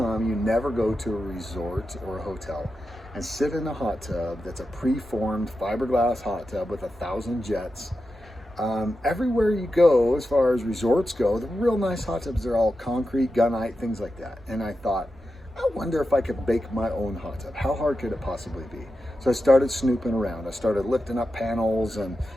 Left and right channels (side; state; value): both; normal; correlation 0.90